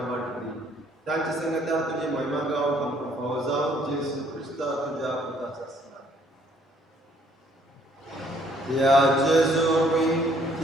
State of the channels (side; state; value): both; normal; correlation 0.64